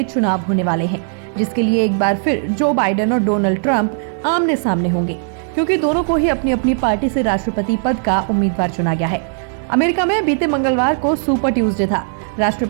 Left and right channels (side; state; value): left; silent; 56 dB below the other